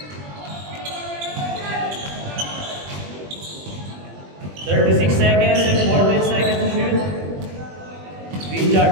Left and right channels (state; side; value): late; left; 20 ms